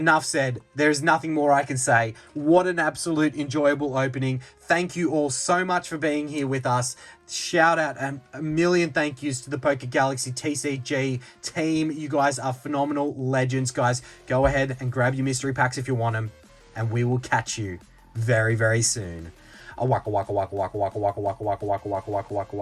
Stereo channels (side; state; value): both; identical; correlation 1.00